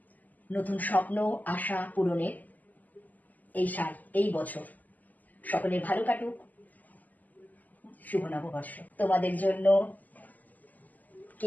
নতুন স্বপ্ন, আশা পূরণের এই সাল, এই বছর সকলের ভালো কাটুক। শুভ নববর্ষ। তোমাদের জন্য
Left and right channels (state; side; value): late; right; 0.081 ms